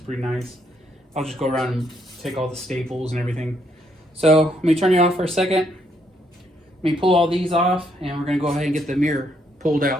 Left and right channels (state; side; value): normal; both; correlation 0.73